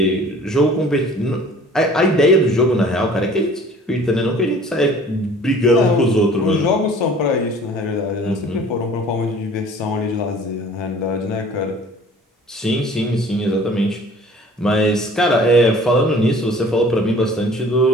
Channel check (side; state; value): both; normal; correlation 0.49